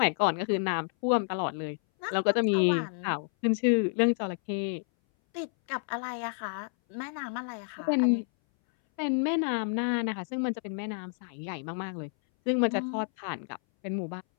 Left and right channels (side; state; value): right; silent; 58 dB below the other